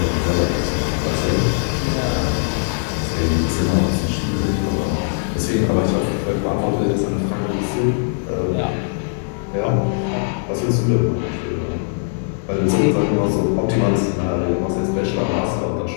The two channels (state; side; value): silent; right; 66 dB below the other